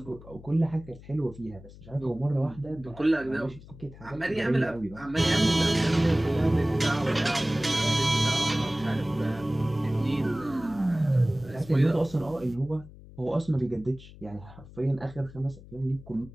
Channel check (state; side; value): noise; left; hum, 19 dB below the sound